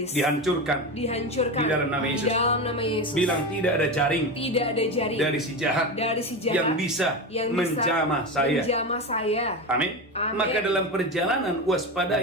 dihancurkan. dihancurkan Di dalam nama Yesus. Di dalam nama Yesus. Bilang tidak ada jaring Tidak ada jaring dari si jahat dari si jahat yang bisa menjamah saya. menjamah saya. Amin. Amin. Maka dalam perjalanan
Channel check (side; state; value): both; normal; correlation 0.20